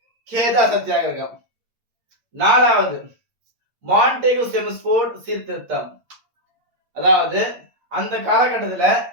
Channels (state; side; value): late; left; 8.6 ms